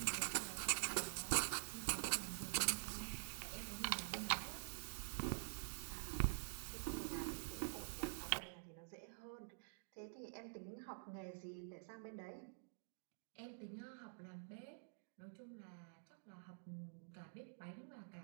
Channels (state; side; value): silent; left; digital silence